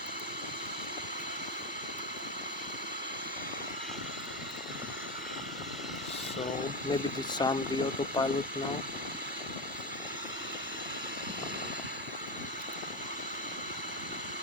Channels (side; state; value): both; normal; correlation 0.13